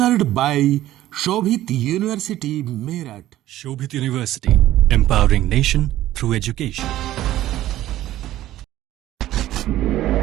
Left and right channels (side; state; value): left; quieter; 14.2 dB